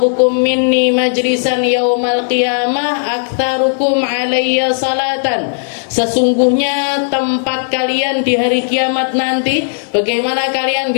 minni majlisan yaumal qiyamah aktsarukum alayya salatan. Sesungguhnya tempat kalian di hari kiamat nanti, bagaimana kalian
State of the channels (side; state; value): right; silent; digital silence